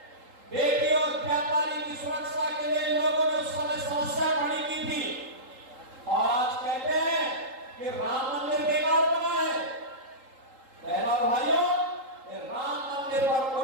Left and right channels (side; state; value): left; late; 3.8 ms